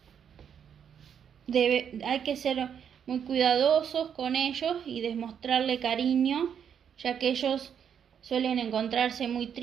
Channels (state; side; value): quieter; left; 8.1 dB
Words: Hay que ser muy cuidadosos con ellos y demostrarle cariño, ya que ellos suelen encontrarse muy